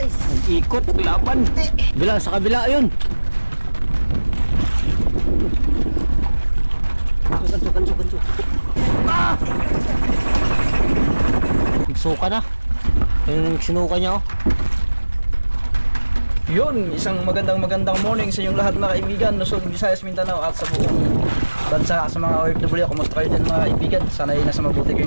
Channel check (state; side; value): inverted; both; correlation -1.00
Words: Nag-ikot, laban. Bila sa kabila, ayun. Ganso. Nagsuka na. Ayun, sinuka niya, oh. Yun, isang magandang morning sa inyong lahat mga kaibigan, Luzon, Visayas, Mindanao at sa buong bansa, sa mga OFW. Kumusta kayo din mga kaibigan? Sana ay nasa mabuti